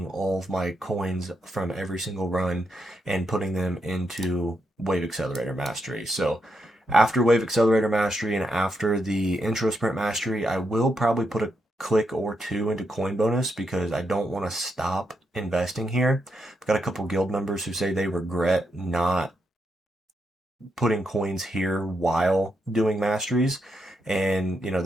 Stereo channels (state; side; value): normal; both; correlation 0.82